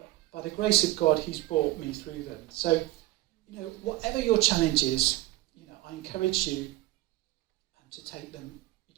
by the grace of God, he's brought me through them. So, whatever your challenge is, I encourage you to take them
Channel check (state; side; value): quieter; left; 17.3 dB